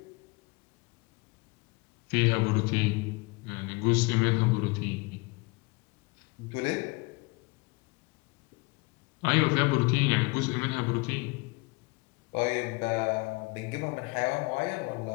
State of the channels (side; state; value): right; quieter; 25.9 dB